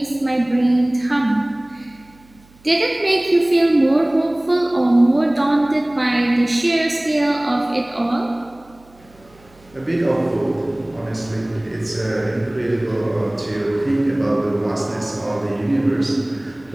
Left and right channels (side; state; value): right; noise; hum, 28 dB below the sound